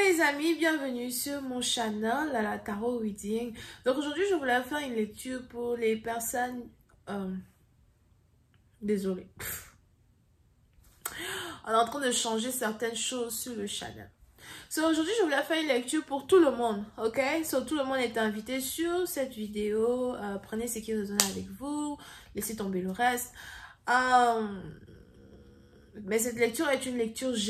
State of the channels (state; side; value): identical; both; correlation 1.00